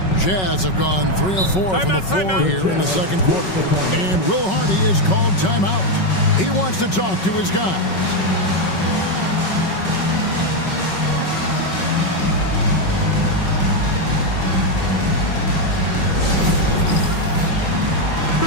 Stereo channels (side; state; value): right; late; 5.3 ms